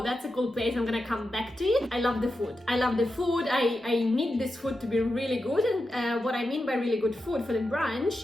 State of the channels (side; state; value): both; normal; correlation 0.89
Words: that's a cool place, I'm gonna come back to it. I love the food. I love the food. I need this food to be really good, and what I mean by really good food for the brunch,